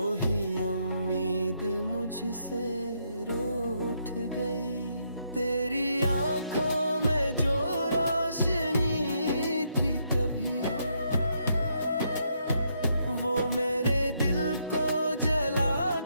उम्मीद मुझसे रूठ गई। तेरी आंखों में जो रोशनी थी कभी, वो मेरे दिल को जला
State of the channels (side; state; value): both; inverted; correlation -0.76